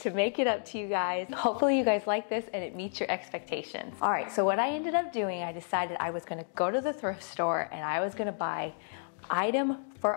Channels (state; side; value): silent; right; digital silence